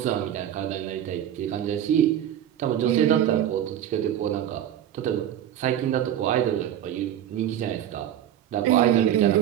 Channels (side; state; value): left; quieter; 10.9 dB